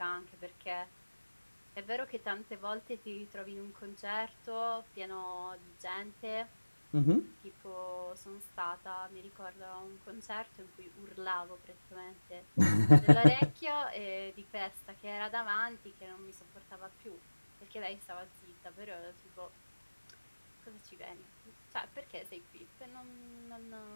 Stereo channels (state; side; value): inverted; both; correlation -1.00